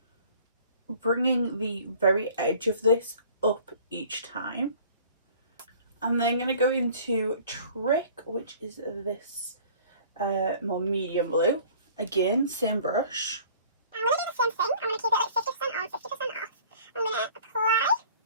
bringing the very edge of this up each time. I'm then going to go into Trick, which is this more medium blue. Again, same brush. I'm going to do the same thing. I'm going to keep it like 50% on, 50% off. I'm going to apply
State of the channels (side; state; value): both; inverted; correlation -0.50